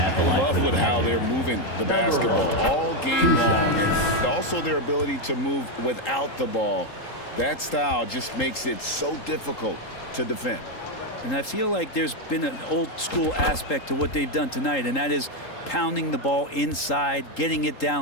the line Love for the with how Magic. they're moving the basketball all game long, and also their ability to move without the ball. That style just makes it so difficult to defend. And I feel like there's been an old school aspect to what they've done tonight, and that is pounding the ball inside, getting it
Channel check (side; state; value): right; late; 3.8 ms